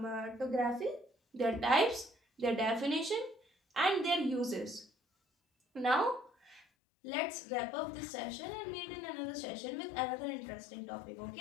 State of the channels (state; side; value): drops out; right; at 6.7 s